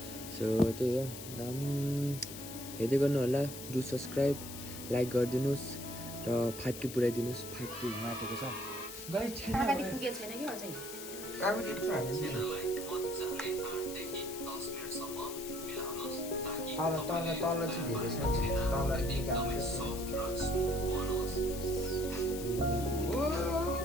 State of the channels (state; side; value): noise; left; hiss, 11 dB below the sound